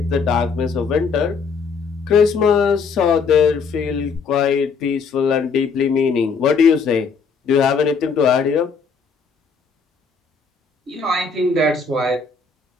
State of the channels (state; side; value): quieter; right; 5.2 dB